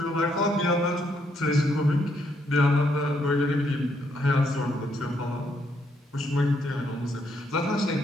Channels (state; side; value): normal; both; correlation 0.74